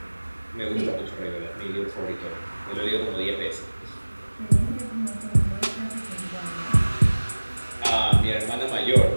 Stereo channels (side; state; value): both; inverted; correlation -1.00